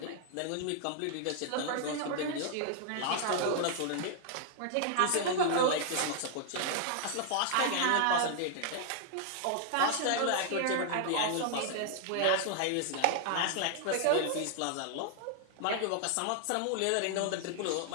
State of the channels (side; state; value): both; different; correlation 0.00